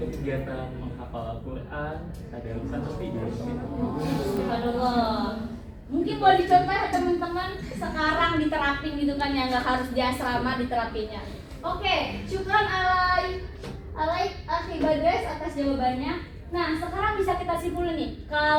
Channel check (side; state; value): both; identical; correlation 1.00